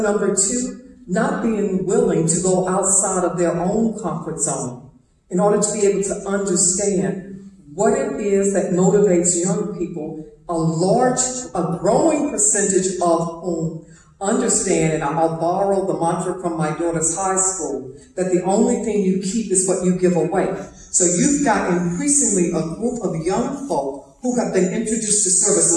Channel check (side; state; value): both; identical; correlation 1.00